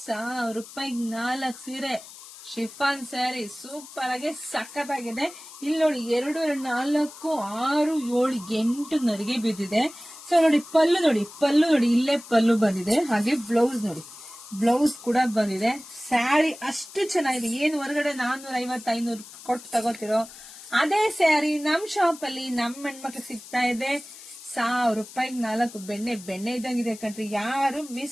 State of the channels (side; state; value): left; noise; hiss, 17 dB below the sound